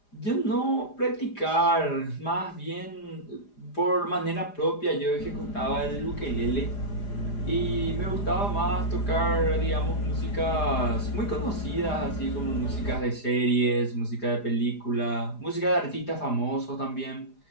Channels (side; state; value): right; late; 4.9 ms